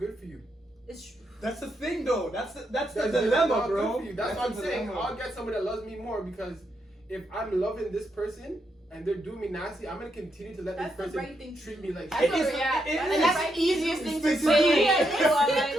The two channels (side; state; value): both; normal; correlation 0.80